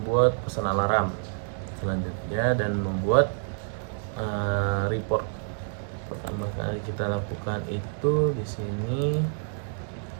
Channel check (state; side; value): silent; left; digital silence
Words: pesan alarm selanjutnya dan membuat report. Pertama kali kita lakukan itu di sini